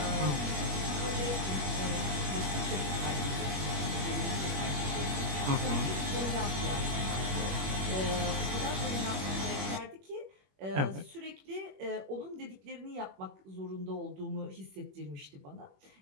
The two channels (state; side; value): late; left; 21 ms